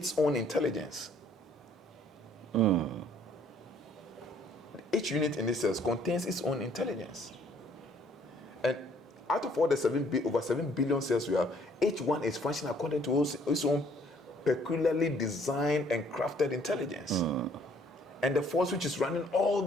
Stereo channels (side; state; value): both; normal; correlation 0.62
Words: own intelligence. Each unit in this cell contains its own intelligence. And out of all the over 7 billion cells we have, each one is functioning according to its own peculiarly designed and crafted intelligence. And the force which is running all